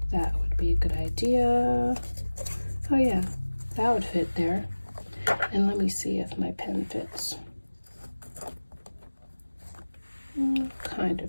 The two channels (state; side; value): inverted; both; correlation -1.00